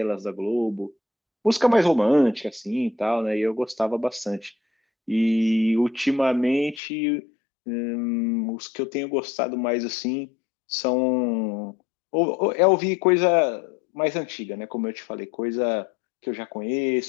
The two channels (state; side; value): drops out; right; at 6.8 s